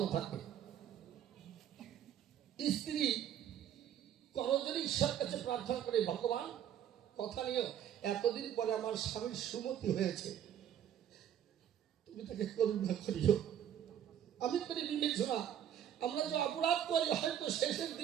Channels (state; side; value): quieter; left; 10.1 dB